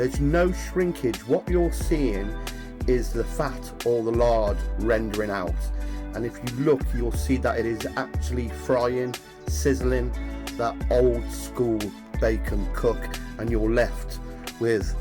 no shrinkage. What you're seeing is the fat or the lard rendering out, and if you look you'll see that it is actually frying, sizzling that old school bacon cook, and you're left with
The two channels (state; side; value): identical; both; correlation 1.00